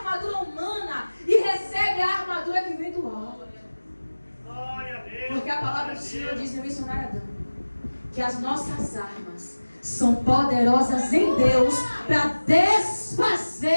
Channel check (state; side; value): inverted; both; correlation -1.00